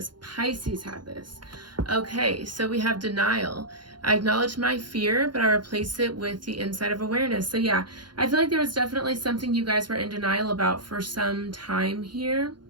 Pisces had this. Okay, so we have denial. I acknowledge my fear, but I replace it with the insight of awareness. So yeah, I feel like there was definitely something you guys were in denial about for some time here.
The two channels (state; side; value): late; left; 0.71 ms